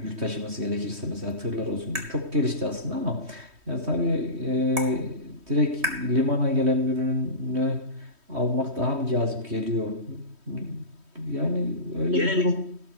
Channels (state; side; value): late; left; 3.1 ms